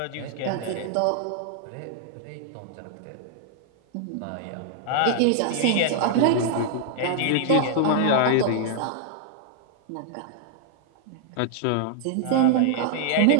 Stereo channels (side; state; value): both; different; correlation 0.00